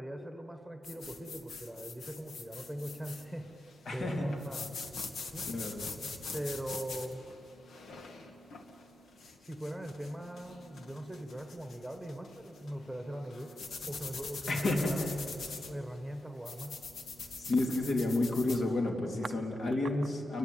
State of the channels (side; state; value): both; normal; correlation 0.89